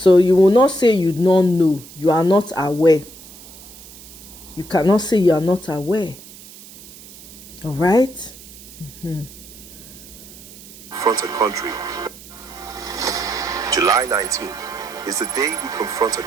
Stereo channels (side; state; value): right; noise; hiss, 18 dB below the sound